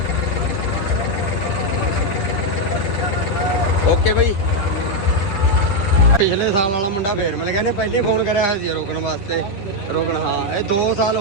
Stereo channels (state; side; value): late; right; 10 ms